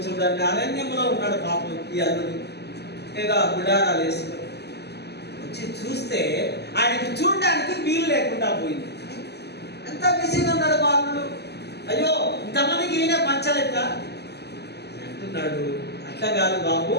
చూడడానికి? అరణ్యంలో ఉన్నాడు పాపం ఈ అల్లుడు, ఏదో గుడారాలు వేసుకొని వచ్చి చూస్తే ఆయనకి చూడడానికి వీలు లేకుండా పోయింది. ఎంత బిజీగా ఉన్నాడు బాలుడు. అయ్యో ఇంతమందికి ఈయన పంచలేక అంటున్నాడు. అట్లా కాదు బాబు,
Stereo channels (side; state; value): right; late; 0.48 ms